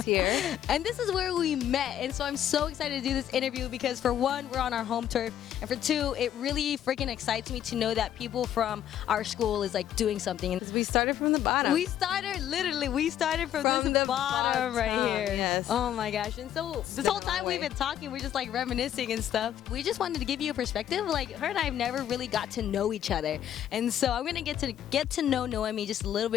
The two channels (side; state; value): right; quieter; 10.8 dB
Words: here. And this is where we met. And so I'm so excited to do this interview because for one, we're on our home turf. And for two, it really freaking excites me to know that people from our school is like doing something. And we started from the bottom. We started from the bottom right here. Yes. Oh my gosh. And so this whole time we've been talking, we're just like reminiscing and stuff. We just wanted to give you a perspective. Like her and I have never really got to know each other. And so I'm going to get to know Noemi just a little